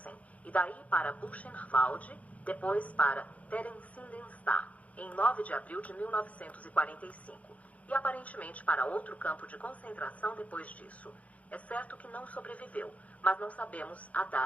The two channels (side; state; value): right; late; 0.068 ms